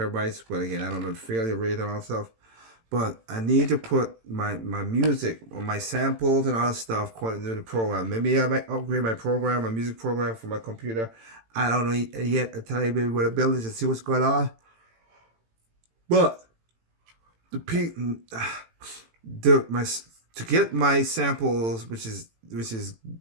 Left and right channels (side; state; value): left; late; 18 ms